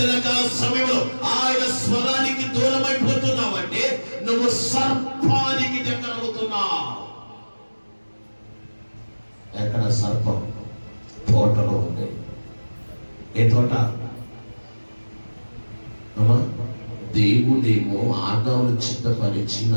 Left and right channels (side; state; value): both; inverted; correlation -1.00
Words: సమయంలో ఆయన స్వరానికి దూరం అయిపోతున్నావంటే నువ్వు సర్పానికి దగ్గర అవుతున్నావు. ఎక్కడ సర్పం? తోటలో ఉంది. ఏ తోట? అమ్మా, దేవుడేమో ఆదామును చిత్తపరిచి